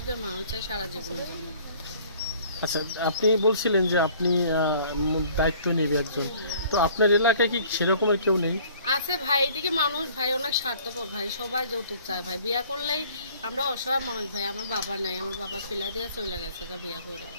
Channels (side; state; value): both; inverted; correlation -0.55